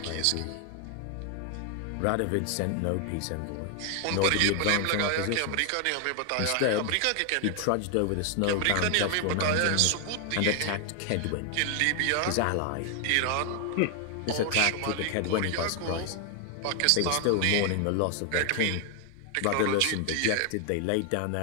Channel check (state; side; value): different; both; correlation 0.00